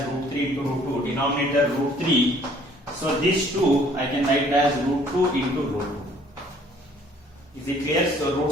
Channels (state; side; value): normal; both; correlation 0.58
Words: root 3 into root 2. Denominator root 3. So this 2 I can write as root 2 into root 2. Is it clear? So